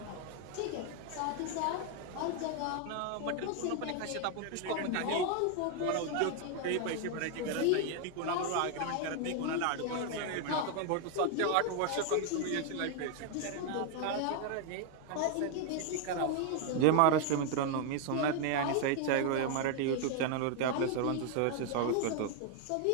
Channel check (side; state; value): both; different; correlation 0.00